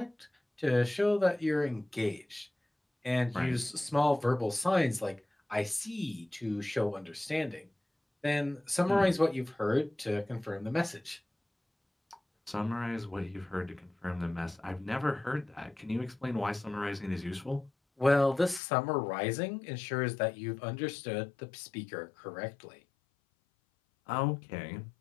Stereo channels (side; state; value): right; drops out; at 18.6 s